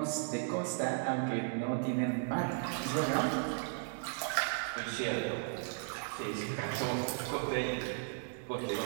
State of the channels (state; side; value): silent; left; digital silence